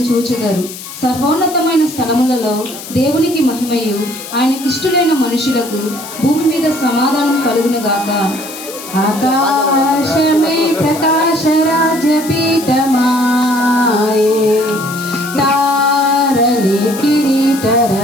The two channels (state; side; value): noise; left; hiss, 13 dB below the sound